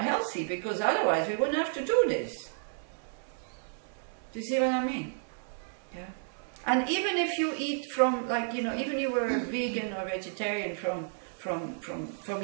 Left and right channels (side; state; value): left; silent; 57 dB below the other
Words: healthy, because otherwise we wouldn't have to do this. Do you see what I mean? Yeah. And even if you eat from, like, you know, even you were vegan or vegetarian from